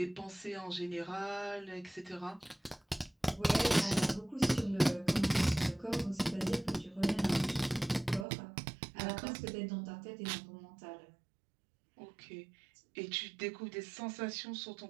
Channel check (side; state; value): left; drops out; at 8.2 s